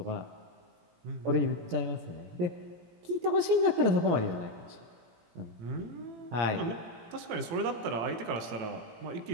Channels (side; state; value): left; late; 17 ms